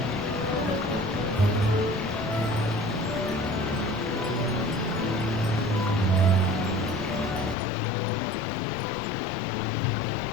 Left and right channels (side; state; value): right; drops out; at 7.6 s